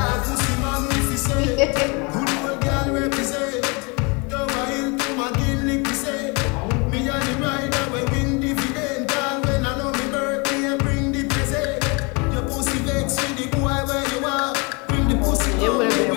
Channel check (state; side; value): quieter; right; 30.2 dB